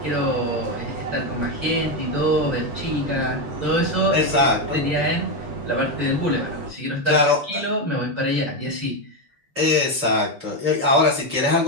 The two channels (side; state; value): left; late; 7.0 ms